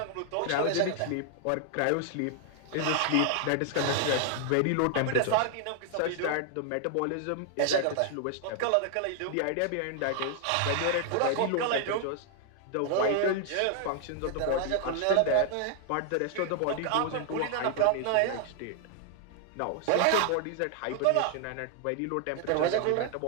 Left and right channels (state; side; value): different; both; correlation 0.00